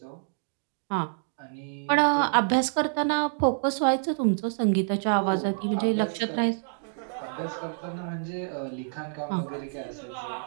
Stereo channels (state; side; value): silent; left; digital silence